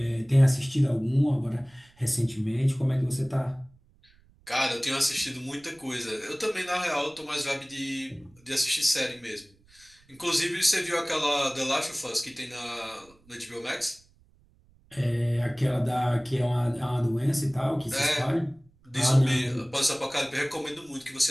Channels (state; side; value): noise; right; rumble, 30 dB below the sound